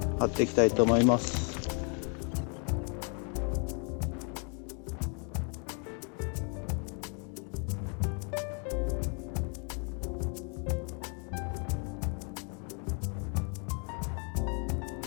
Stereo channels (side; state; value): right; quieter; 38.6 dB